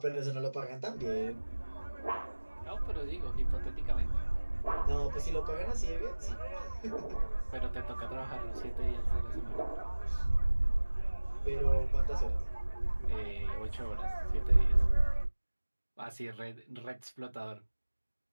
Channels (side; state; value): both; inverted; correlation -1.00